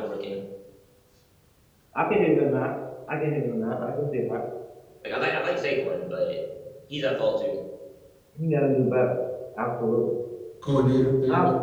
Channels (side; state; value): both; identical; correlation 1.00